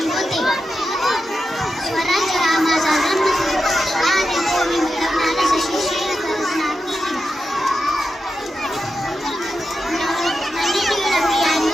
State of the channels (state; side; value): normal; both; correlation 0.89